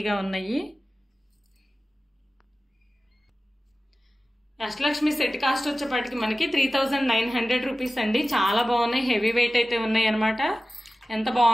ఉన్నాయి. అష్టలక్ష్మి సెట్ కాస్ట్ వచ్చేప్పటికి మనకి 3900 రూపీస్ అండి. చాలా బాగున్నాయి. హెవీ వెయిట్ అయితే ఉన్నాయి అనమాట. ఎంత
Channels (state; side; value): normal; both; correlation 0.95